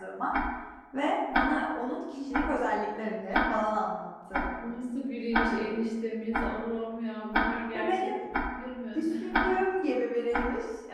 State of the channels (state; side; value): identical; both; correlation 1.00